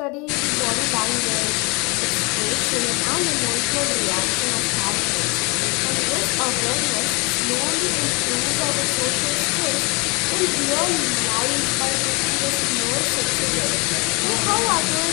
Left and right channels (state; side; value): quieter; right; 28.7 dB